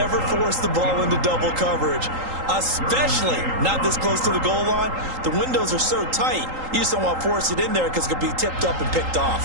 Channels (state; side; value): late; left; 3.8 ms